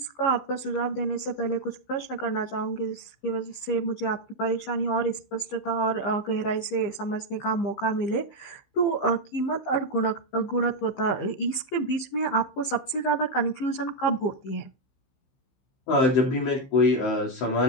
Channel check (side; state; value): right; late; 15 ms